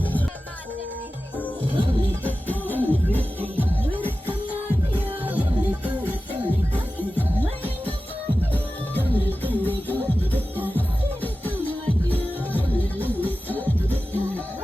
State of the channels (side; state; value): both; normal; correlation 0.95